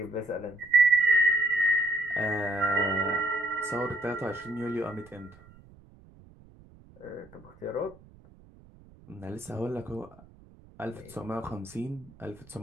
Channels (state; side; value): noise; right; rumble, 24 dB below the sound